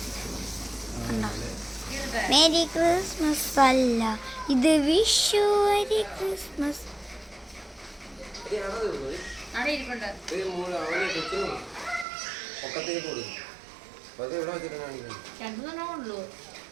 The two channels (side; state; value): left; drops out; at 12.1 s